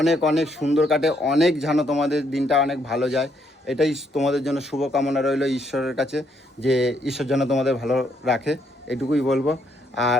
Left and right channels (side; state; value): both; normal; correlation 0.73